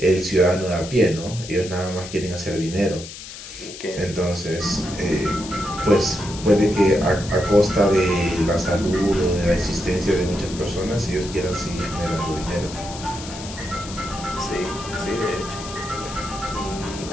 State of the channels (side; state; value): left; noise; hiss, 12 dB below the sound